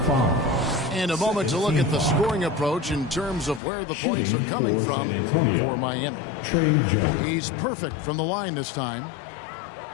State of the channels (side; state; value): right; drops out; at 3.6 s